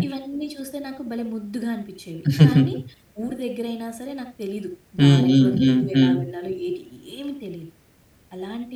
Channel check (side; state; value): both; identical; correlation 1.00